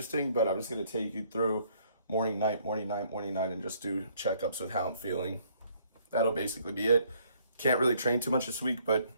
but I'm just gonna take you through morning, night, and just do checkups with how I'm feeling. That'll basically be it. Can't really train too much this week, but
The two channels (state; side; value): inverted; both; correlation -0.64